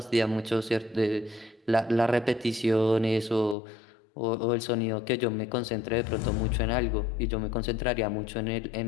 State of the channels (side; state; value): right; drops out; at 3.6 s